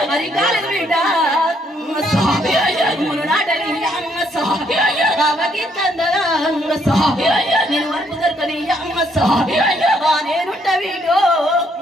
మరి కాలం వీడ మును నాటని నేను వరకు దొరకని నేనుంట వీడు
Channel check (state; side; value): normal; both; correlation 0.71